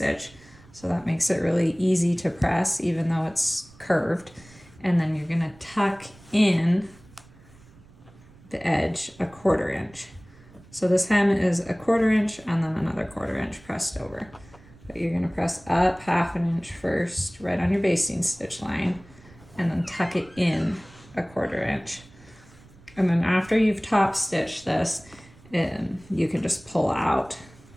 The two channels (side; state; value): right; noise; rumble, 24 dB below the sound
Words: So that makes it really easy to press even though it's curved. And then you're gonna tuck in the edge 1/4 inch. So this hem is 1/4 inch and then another 1/4 inch pressed over. But you're gonna press up 1/2 inch first, right on your basting stitch line, and then tuck it in 1/4 inch. And then after you've top stitched this, you can just pull out